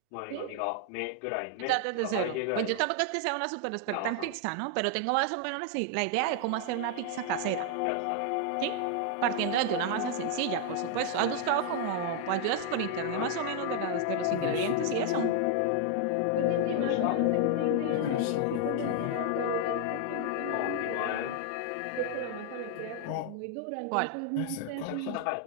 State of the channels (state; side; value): different; both; correlation 0.00